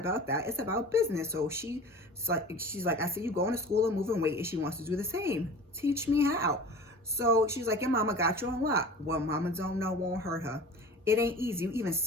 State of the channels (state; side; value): normal; both; correlation 0.39